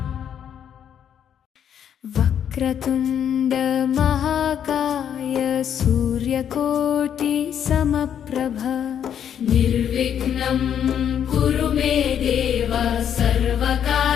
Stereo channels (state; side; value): quieter; right; 9.0 dB